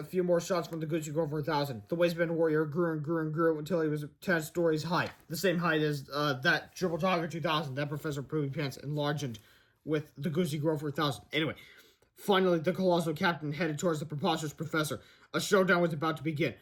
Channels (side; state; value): both; identical; correlation 1.00